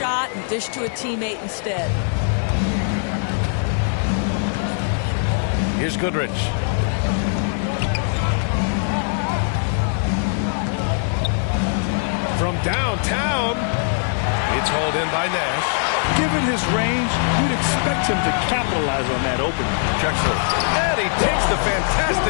and dish to a teammate instead. Here's Goodrich. From downtown, it's hauled in by Nash. Given his range, you'd expect him to capitalize on that opening. Drexler. And he takes the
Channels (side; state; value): right; silent; digital silence